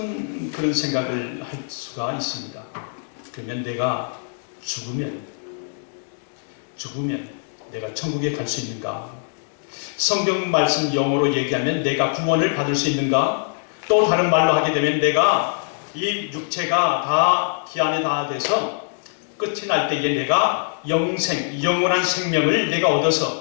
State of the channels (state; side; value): silent; right; digital silence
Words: 그런 생각을 할 수가 있습니다. 그러면 내가 죽으면 내가 천국에 갈 수 있는가? 성경 말씀 영어로 얘기하면 내가 구원을 받을 수 있는가? 또 다른 말로 하게 되면 내가 이 육체가 다 기한이 다 돼서 끝이 날 때에 내가 영생, 영원한 생명을 내가